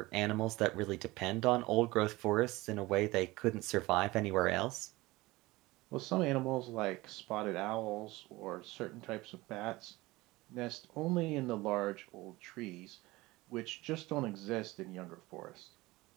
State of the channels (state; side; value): quieter; left; 20.3 dB